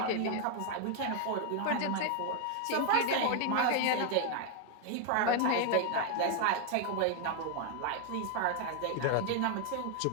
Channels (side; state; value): both; different; correlation 0.00